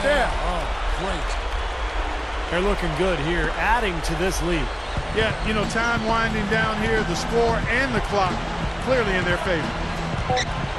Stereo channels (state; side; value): identical; both; correlation 1.00